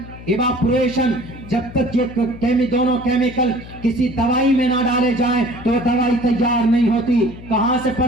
ایواپوریشن. جب تک یہ دونوں کیمیکل کسی دوائی میں نہ ڈالے جائیں تو دوائی تیار نہیں ہوتی. کہاں سے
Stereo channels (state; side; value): noise; left; hum, 16 dB below the sound